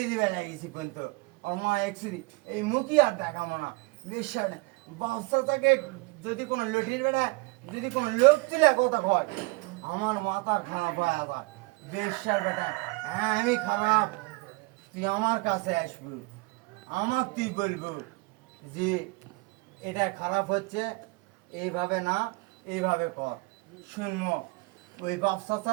দিবে লাগিয়েছি কিন্তু ওর মা এক্স দি এই মুখই আর দেখাবো না বেশ্যার বেটা বাচ্চাটাকে যদি কোনো লটির বেড়ায় যদি কোনো লোক তুলে কথা হয় আমার মাথা খারাপ হয়ে আবার বেশ্যার বেটা হ্যাঁ আমি খারাপ তুই আমার কাছে আসবি আমার তুই বলবো যে এটা খারাপ হচ্ছে এইভাবে না এইভাবে কর শুনবো ওই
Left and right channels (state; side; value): quieter; left; 25.9 dB